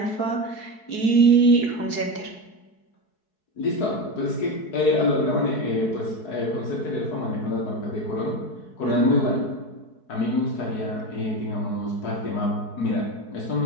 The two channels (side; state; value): right; late; 4.7 ms